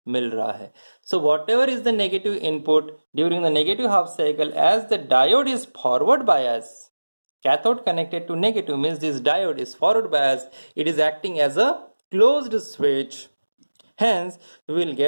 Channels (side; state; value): both; inverted; correlation -1.00